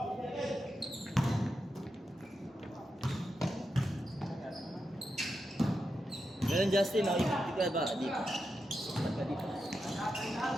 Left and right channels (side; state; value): both; normal; correlation 0.87